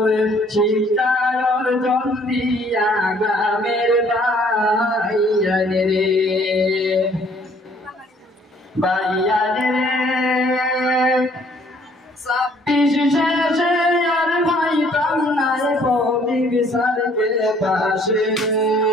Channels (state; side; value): normal; both; correlation 0.60